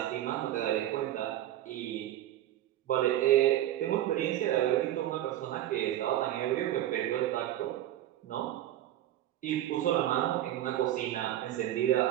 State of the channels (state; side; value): quieter; left; 13.1 dB